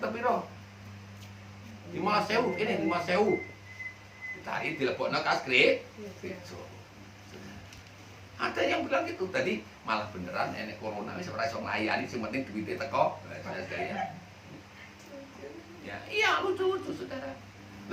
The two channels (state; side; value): identical; both; correlation 1.00